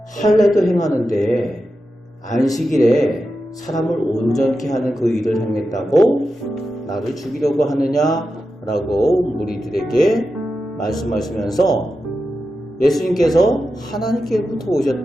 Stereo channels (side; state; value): both; normal; correlation 0.90